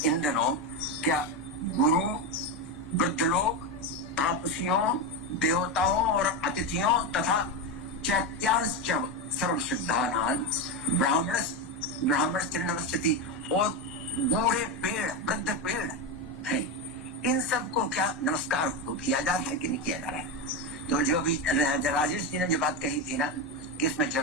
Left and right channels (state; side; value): normal; both; correlation 0.13